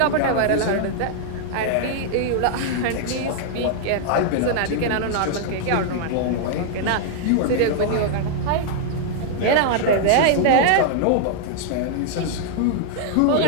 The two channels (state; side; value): different; both; correlation -0.01